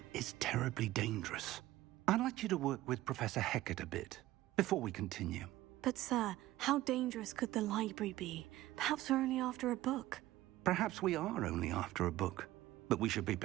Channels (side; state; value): left; quieter; 16.1 dB